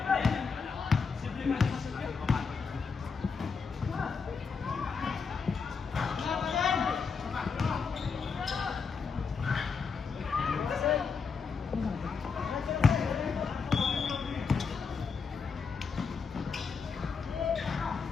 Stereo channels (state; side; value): quieter; right; 5.4 dB